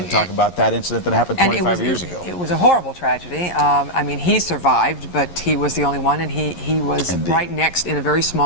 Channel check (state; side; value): late; right; 11 ms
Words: to talk about that incident that happened 25 years ago. It was a horrible tragedy. I mean, he survived, but he was the only one, and he was Indeed. right next, in a very